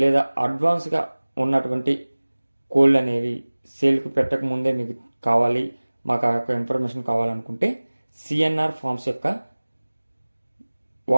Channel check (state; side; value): inverted; both; correlation -1.00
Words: లేదా అడ్వాన్స్గా ఉన్నటువంటి కోళ్ళు అనేవి సేల్కి పెట్టక ముందే మీకు కావాలి, మాకు ఆ యొక్క ఇన్ఫర్మేషన్ కావాలనుకుంటే సిఎన్ఆర్ ఫార్మ్స్ యొక్క